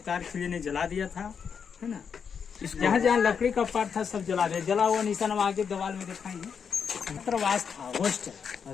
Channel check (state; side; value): quieter; right; 6.7 dB